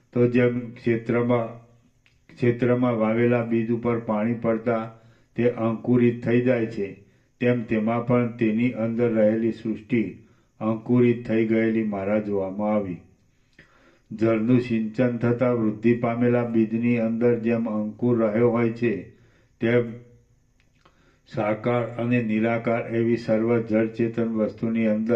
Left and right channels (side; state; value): both; identical; correlation 1.00